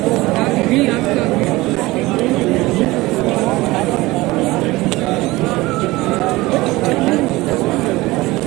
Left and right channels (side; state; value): left; quieter; 20.1 dB